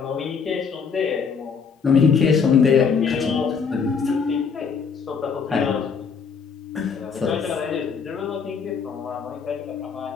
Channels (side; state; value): right; quieter; 5.9 dB